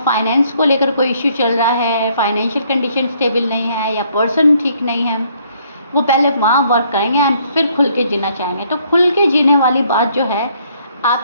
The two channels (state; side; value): inverted; both; correlation -0.66